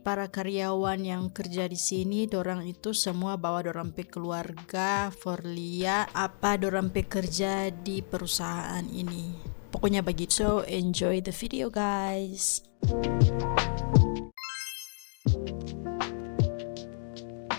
para karyawan yang kerja di sini, dorang itu semua bawa dorang pe keluarga for liat apa dorang pe kerja di perusahaan ini. Pokoknya begitu. So enjoy the video guys.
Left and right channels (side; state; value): right; silent; digital silence